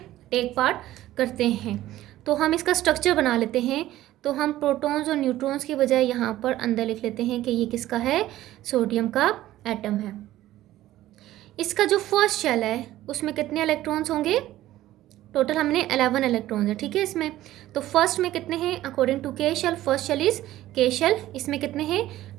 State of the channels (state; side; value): quieter; left; 14.7 dB